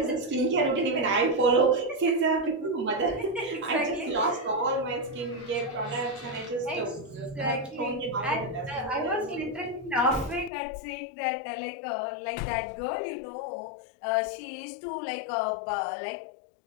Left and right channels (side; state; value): right; drops out; at 10.5 s